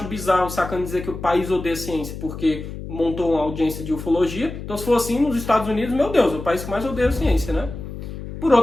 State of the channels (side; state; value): left; noise; hum, 9 dB below the sound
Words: bizarro o Sacani dizer que o país odeia ciência porque montou uma audiência de ufologia, então se for assim, nos Estados Unidos, meu Deus, é o país que mais odeia a ciência, né? Por